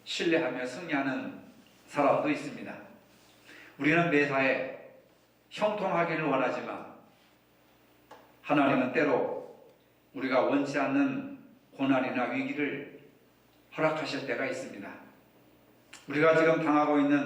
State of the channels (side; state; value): both; identical; correlation 1.00